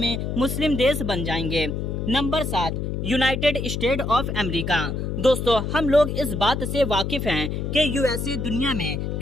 मुस्लिम देश बन जाएंगे। Number 7, United state of America. दोस्तों, हम लोग इस बात से वाकिफ हैं कि यूएसए दुनिया में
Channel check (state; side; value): noise; left; hum, 3 dB below the sound